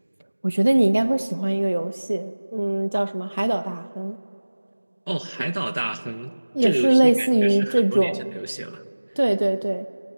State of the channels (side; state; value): both; inverted; correlation -1.00